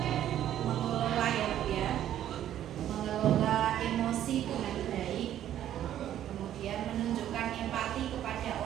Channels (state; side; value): quieter; left; 11.4 dB